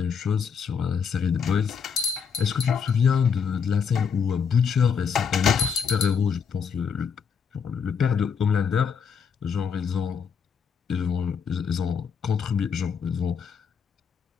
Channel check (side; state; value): right; quieter; 6.5 dB